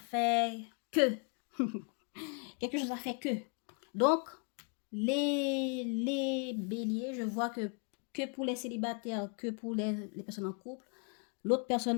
que. Quelque chose a fait que. Donc, les béliers, je vois que pour les célibataires, que pour les personnes en couple, l'autre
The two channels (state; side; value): quieter; right; 38.8 dB